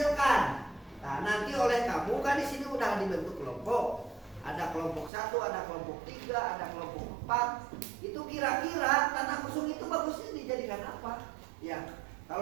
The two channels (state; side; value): drops out; left; at 5.1 s